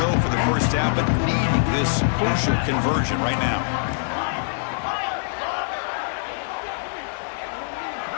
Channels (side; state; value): right; silent; digital silence